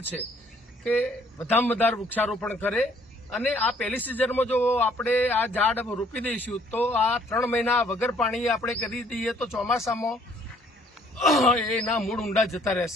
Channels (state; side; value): normal; both; correlation 0.61